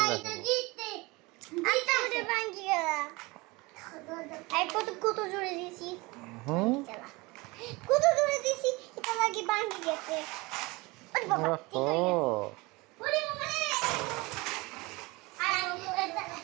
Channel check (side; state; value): left; quieter; 23.9 dB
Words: জিততে জিততে ভাঙে গেল। এই কত জোরে দিছি। হুম কত জোরে দিছি এটা লাগি ভাঙে গেছে। ওরে বাবা ঠিক হয়ে গেছে। ওরে বাবা রে।